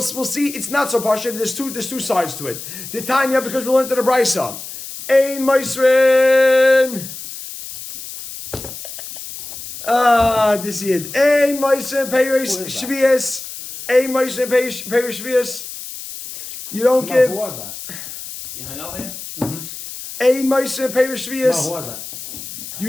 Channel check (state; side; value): noise; left; hiss, 11 dB below the sound